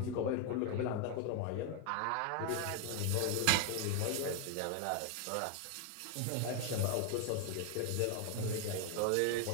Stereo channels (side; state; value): both; different; correlation 0.01